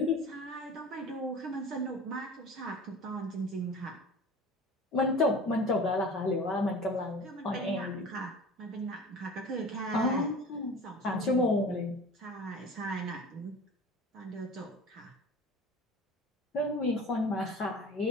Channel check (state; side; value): normal; both; correlation 0.39